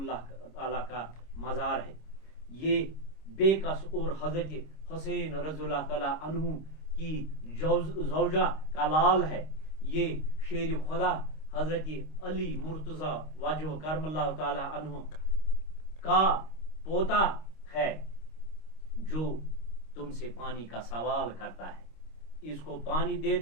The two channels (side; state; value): right; late; 26 ms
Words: تعالیٰ کا مزار ہے. یہ بے کس اور حضرت حسین رضی اللہ تعالیٰ عنہ کی زوجہ کا لال ہے. یہ شیر خدا حضرت علی مرتضی وجہ کرم اللہ تعالیٰ عنہ کا پوتا ہے جو تم سے پانی کا سوال کرتا ہے. اس کو پانی دے